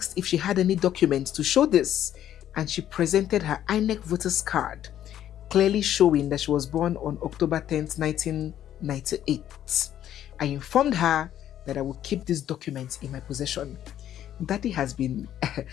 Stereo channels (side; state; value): right; quieter; 11.2 dB